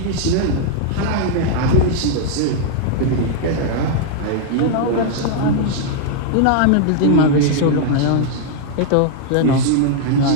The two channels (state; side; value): different; both; correlation -0.01